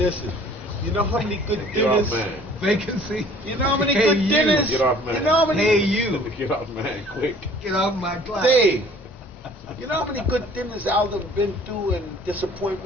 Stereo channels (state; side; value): normal; both; correlation 0.53